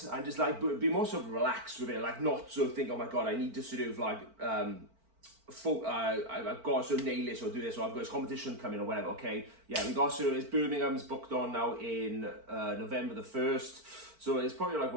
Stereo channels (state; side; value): late; left; 4.5 ms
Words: and just like be more sort of relaxed with it, like not sort of think, oh my God, I need to sort of like, I've got to sort of nail this or do this, or I've got this competition coming or whatever, okay? Yeah, we got sort of, it's Birmingham's booked on now in November the 1st. So it's probably like,